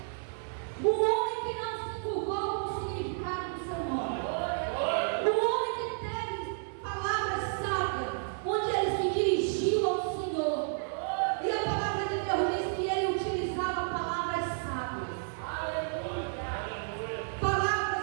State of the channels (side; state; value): left; silent; 57 dB below the other